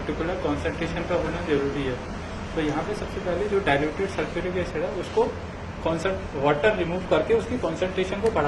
कॉन्सेंट्रेशन का होना जरूरी है। तो यहाँ पे सबसे पहले जो डाइल्यूटेड सल्फ्यूरिक एसिड है उसको वाटर रिमूव करके उसकी कॉन्सेंट्रेशन को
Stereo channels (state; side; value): identical; both; correlation 1.00